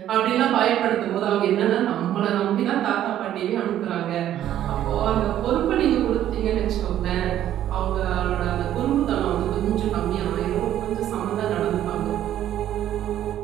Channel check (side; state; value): left; quieter; 11.7 dB